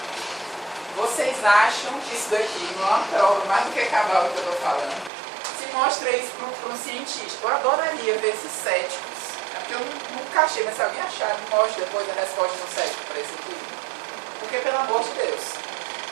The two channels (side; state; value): left; drops out; at 5.1 s